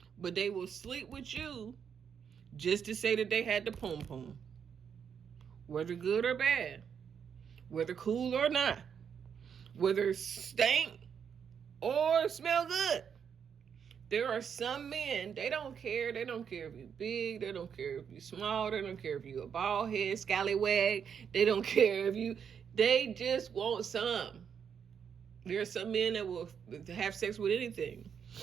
but they will sleep with you just to say that they had the pom pom. Whether good or bad, whether cool or not, whether stink or smell good. There are some men, they don't care. They don't care if you're big. They don't care if you're small. They don't care if you're a bald head, scallywag. They don't care if you, they just want some. There are some men that will have sex with anything.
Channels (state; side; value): quieter; left; 7.4 dB